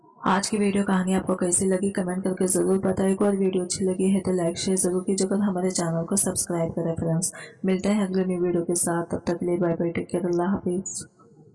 आज की वीडियो कहानी आपको कैसी लगी कमेंट करके जरूर बताइएगा और वीडियो अच्छी लगी है तो लाइक शेयर जरूर कीजिएगा और हमारे चैनल को सब्सक्राइब करें फ्रेंड्स। मिलते हैं अगले न्यू वीडियो के साथ, तब तक के लिए बाय बाय, टेक केयर, अल्लाह हाफिज।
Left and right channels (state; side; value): identical; both; correlation 1.00